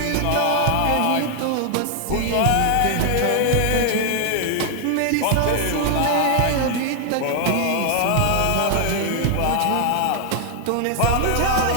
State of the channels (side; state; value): both; different; correlation 0.00